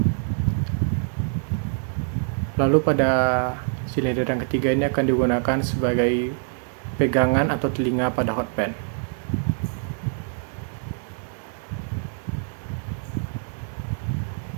Lalu pada silinder yang ketiga ini akan digunakan sebagai pegangan atau telinga pada hot pan.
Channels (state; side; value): silent; left; 59 dB below the other